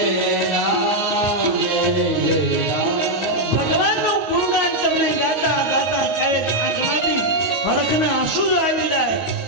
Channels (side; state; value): left; late; 9.5 ms